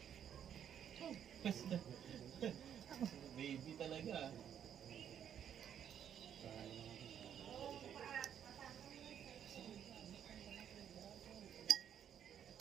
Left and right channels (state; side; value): quieter; left; 9.1 dB